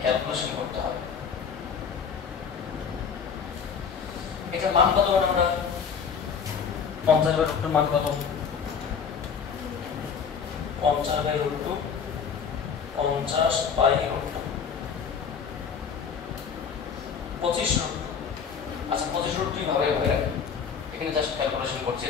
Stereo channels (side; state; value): right; quieter; 6.6 dB